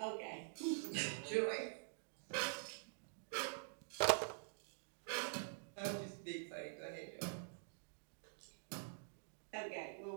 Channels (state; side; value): silent; left; digital silence